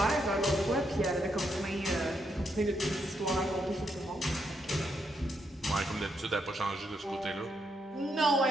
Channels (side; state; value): both; normal; correlation 0.79